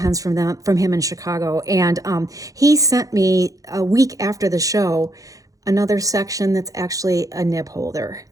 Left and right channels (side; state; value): left; late; 0.17 ms